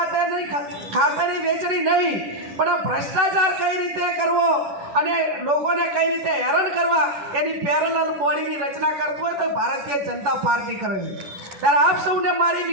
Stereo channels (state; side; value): late; left; 11 ms